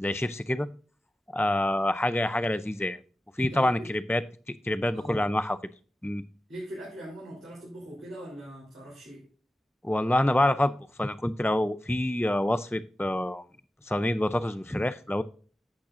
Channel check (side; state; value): both; normal; correlation 0.93